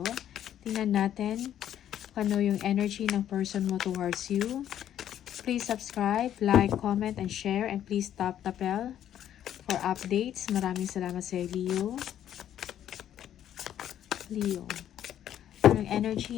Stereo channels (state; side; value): quieter; right; 10.8 dB